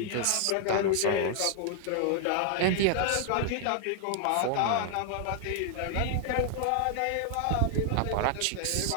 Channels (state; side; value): different; both; correlation 0.00